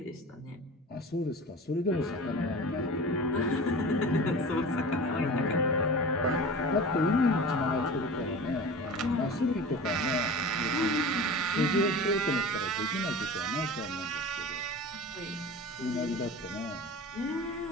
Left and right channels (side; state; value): both; normal; correlation 0.35